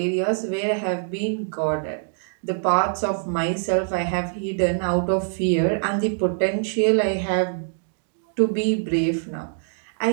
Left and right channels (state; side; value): silent; left; digital silence